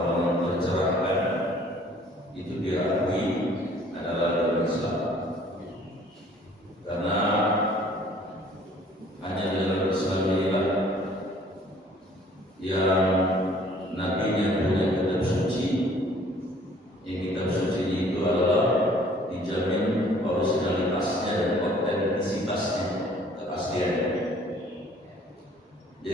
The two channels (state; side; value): normal; both; correlation 0.55